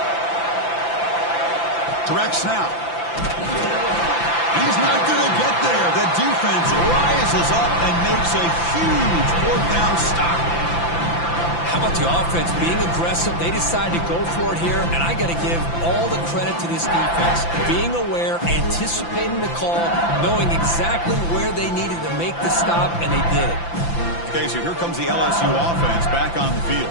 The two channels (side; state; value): right; late; 5.9 ms